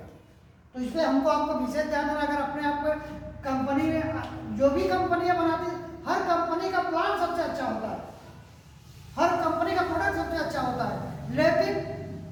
तो इसलिए हमको आपको विशेष ध्यान देना, अगर अपने आप को कंपनी में जो भी कंपनियां बनाती, हर कंपनी का प्लान सबसे अच्छा होता है, हर कंपनी का प्रोडक्ट सबसे अच्छा होता है, लेकिन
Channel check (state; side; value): identical; both; correlation 1.00